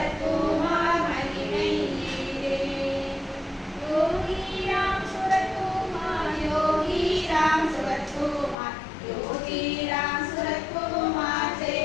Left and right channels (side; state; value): right; drops out; at 8.6 s